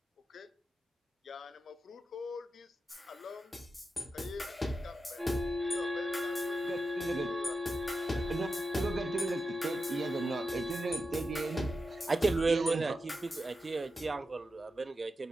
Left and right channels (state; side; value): normal; both; correlation 0.90